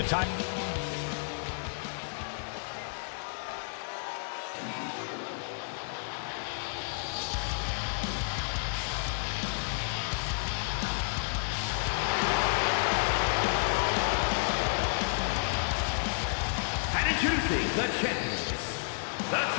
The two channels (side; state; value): right; silent; digital silence